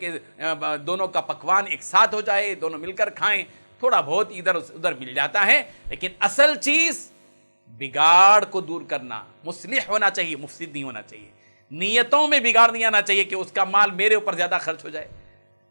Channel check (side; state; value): both; inverted; correlation -1.00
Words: دونوں کا پکوان ایک ساتھ ہو جائے، دونوں مل کر کھائیں. تھوڑا بہت ادھر ادھر مل جاتا ہے، لیکن اصل چیز بگاڑ کو دور کرنا، مصلح ہونا چاہیے، مفسد نہیں ہونا چاہیے. نیتوں میں بگاڑ نہیں آنا چاہیے کہ اس کا مال میرے اوپر زیادہ خرچ ہو جائے،